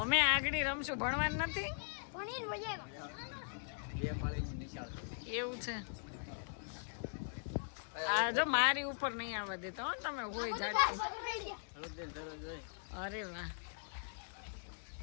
અમે આગળ રમશું, ભણવાનું નથી. એવું છે? આ જો મારી ઉપર નહીં આવવા દેતા હો તમે, હોય જાટતી. અરે વાહ,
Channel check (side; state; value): right; silent; digital silence